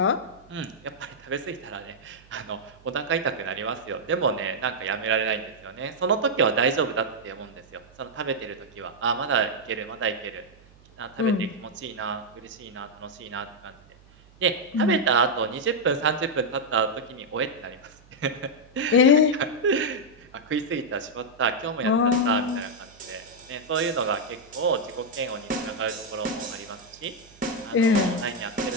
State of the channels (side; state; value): right; noise; hum, 26 dB below the sound